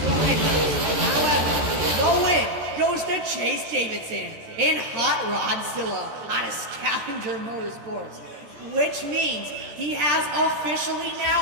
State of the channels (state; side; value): late; left; 14 ms